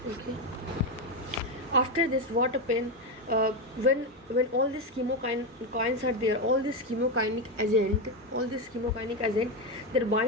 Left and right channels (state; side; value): normal; both; correlation 0.10